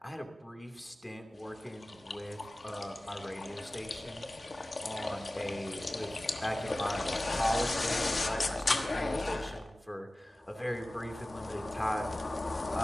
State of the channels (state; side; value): normal; both; correlation 0.97